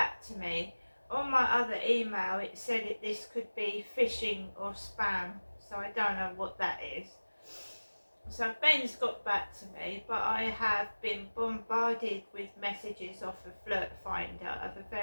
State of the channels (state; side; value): inverted; both; correlation -1.00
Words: to me. On my other email it said this could be phishing or spam, so I don't know what that is. So Ben's got back to me, but I have been bombarded with messages off of Flirt Finder of a